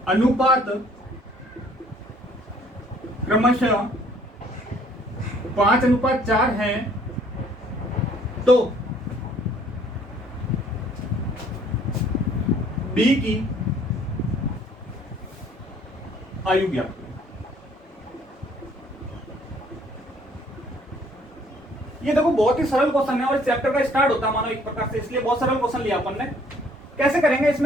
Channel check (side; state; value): both; normal; correlation 0.60